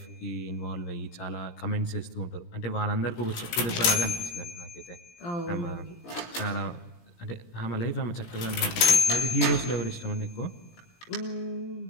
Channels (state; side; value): late; right; 17 ms